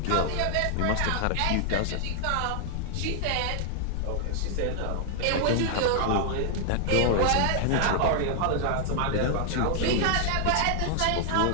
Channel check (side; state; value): both; different; correlation 0.00